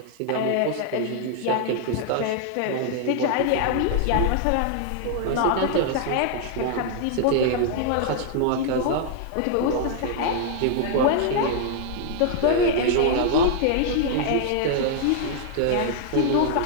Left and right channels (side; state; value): both; different; correlation 0.00